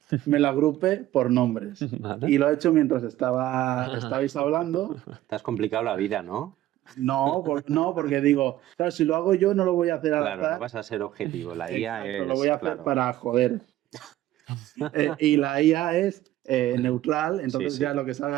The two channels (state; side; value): quieter; left; 14.5 dB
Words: me la agrupe por nombres. Y lo he hecho mientras estabais hablando. Te has complicado la vida, ¿no? No, porque digo, claro, si lo hago yo no lo voy a hacer al azar. Claro, no vas a ser objetivo. La IA es... Lo voy a hacer para joder. Y la IA es neutral, entonces ya lo que salga